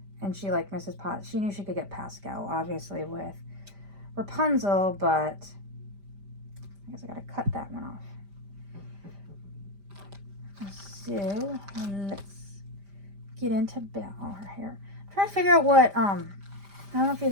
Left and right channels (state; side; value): late; left; 5.0 ms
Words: And she liked Mrs. Potts. She knew she could get Pascal, obviously, with Rapunzel, but I guess I gotta cut that one off. So let's get into Belle, her hair. I'm trying to figure out what, I don't know if you